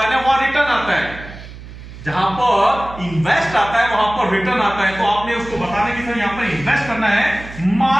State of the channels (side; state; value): right; noise; hum, 15 dB below the sound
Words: ना वहां रिटर्न आता है। जहां पर इन्वेस्ट आता है वहां पर रिटर्न आता है। तो आपने उसको बताने की सर यहां पर इन्वेस्ट करना है